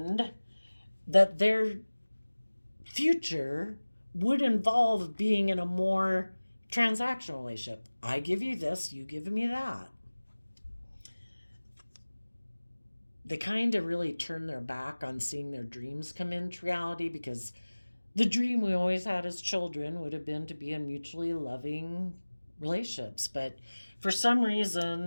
that their future would involve being in a more transactional relationship. I give you this, you give me that. They kind of really turn their back on seeing their dreams come into reality, because the dream we always had as children would have been to be in mutually loving relationships. But for some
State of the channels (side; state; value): both; inverted; correlation -1.00